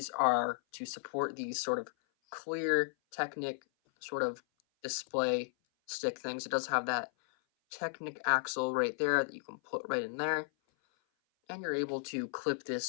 are to support these sort of clear Technic sort of display stick things. It does have that Technic axle right there that you can put right in there, and you're able to clip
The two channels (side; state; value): right; silent; 54 dB below the other